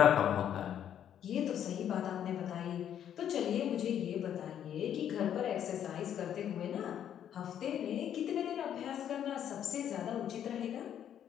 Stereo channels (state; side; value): quieter; right; 9.8 dB